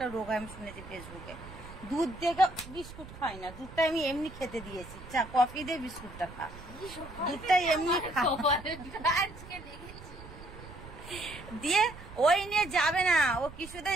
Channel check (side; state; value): right; noise; rumble, 15 dB below the sound